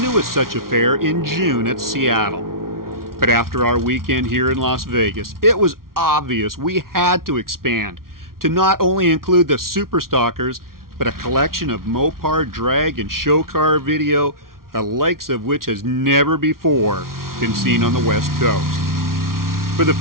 such affair in June at Seattle. But after our weekend here in Las Vegas, it was obvious we had to expand to not only include the Superstockers, but a collection of Mopar drag and show car video, the likes of which has never before been seen on the West Coast. For the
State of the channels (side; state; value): left; late; 0.93 ms